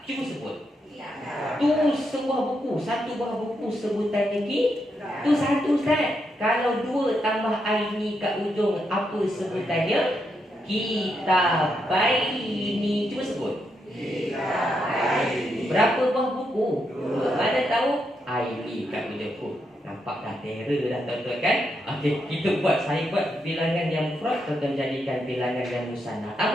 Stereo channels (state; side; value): normal; both; correlation 0.81